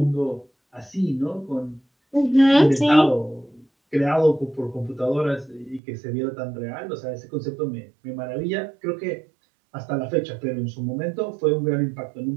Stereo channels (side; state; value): left; drops out; at 5.8 s